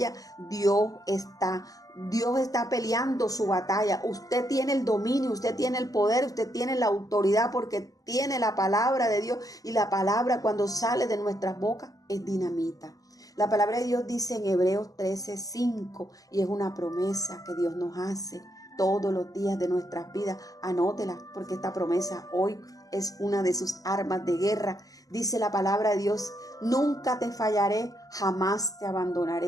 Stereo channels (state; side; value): late; right; 0.17 ms